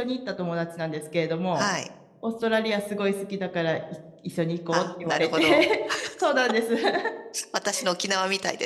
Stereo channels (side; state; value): both; identical; correlation 1.00